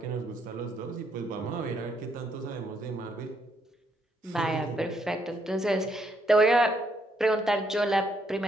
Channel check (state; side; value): normal; both; correlation 0.74